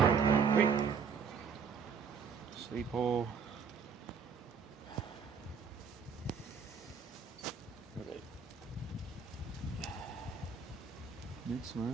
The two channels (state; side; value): quieter; left; 6.0 dB